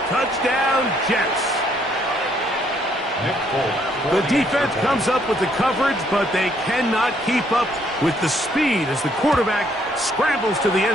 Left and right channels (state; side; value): normal; both; correlation 0.68